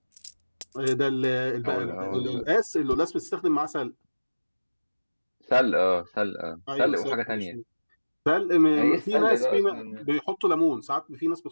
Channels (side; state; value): both; inverted; correlation -1.00